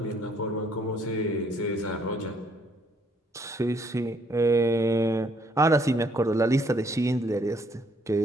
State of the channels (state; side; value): normal; both; correlation 0.67